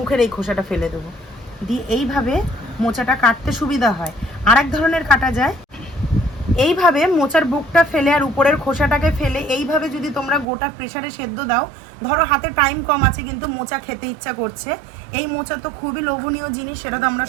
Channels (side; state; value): left; drops out; at 10.5 s